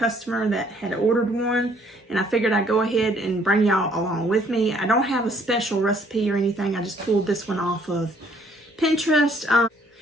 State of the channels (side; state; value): both; normal; correlation 0.63